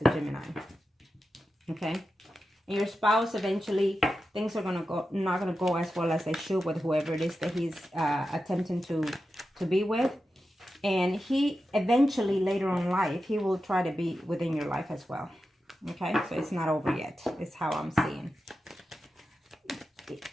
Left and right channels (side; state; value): both; normal; correlation 0.91